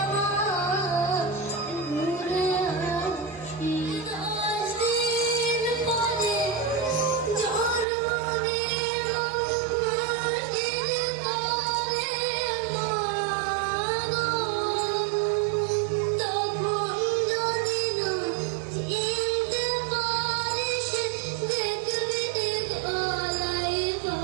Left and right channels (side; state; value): left; drops out; at 7.9 s